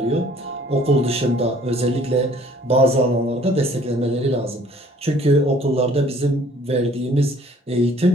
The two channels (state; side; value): normal; both; correlation 0.56